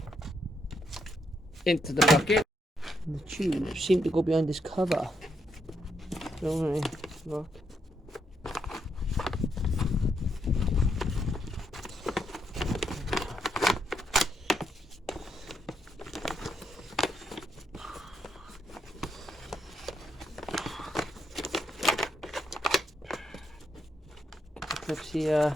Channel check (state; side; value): normal; both; correlation 0.78